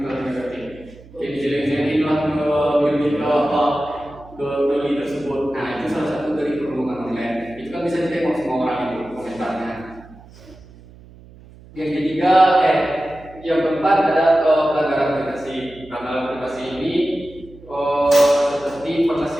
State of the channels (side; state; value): right; noise; hum, 22 dB below the sound